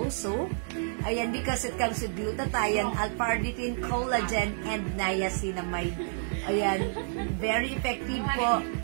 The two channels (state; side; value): silent; left; 58 dB below the other